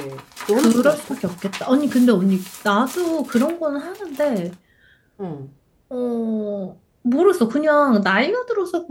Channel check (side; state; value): both; identical; correlation 1.00